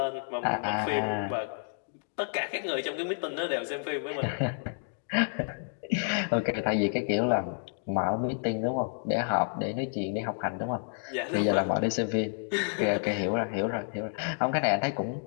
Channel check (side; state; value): right; silent; digital silence